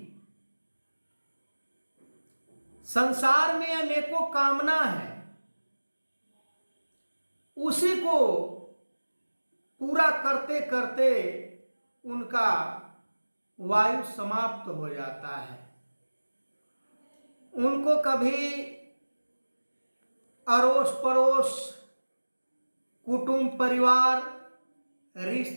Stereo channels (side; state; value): both; inverted; correlation -1.00